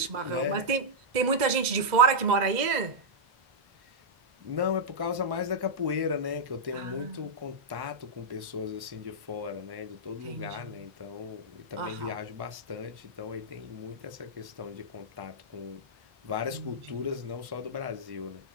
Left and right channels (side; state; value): left; late; 2.0 ms